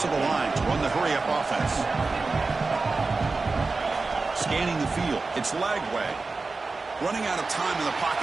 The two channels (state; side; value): quieter; left; 3.8 dB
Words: the line to run the hurry-up offense. Scanning the field. It's Lagway. Running out of time in the